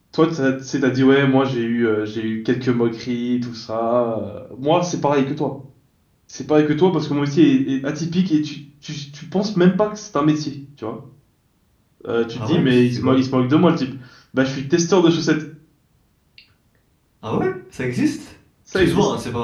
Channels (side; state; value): both; identical; correlation 1.00